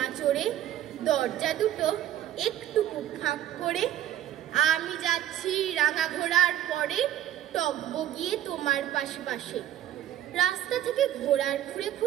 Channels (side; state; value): left; quieter; 12.2 dB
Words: চড়ে, দরজা দুটো একটু ফাঁক করে। আমি যাচ্ছি রাঙা ঘোড়ার পরে, টব্ব গিয়ে তোমার পাশে পাশে। রাস্তা থেকে ঘোড়ার খুঁড়ে